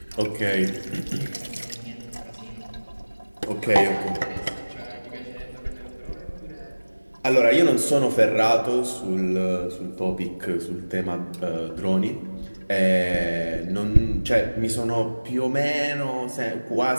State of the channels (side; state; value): both; inverted; correlation -1.00